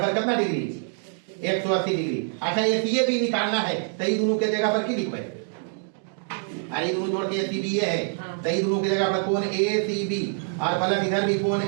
कितना डिग्री, 180 डिग्री। अच्छा ये भी निकालना है, तो ये दोनों के जगह पर की लिखो, अरे दोनों जोड़ के ए सी बी है, तो ये दोनों की जगह पर कोण ए सी बी और प्लस इधर भी कोण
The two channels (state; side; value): silent; left; 58 dB below the other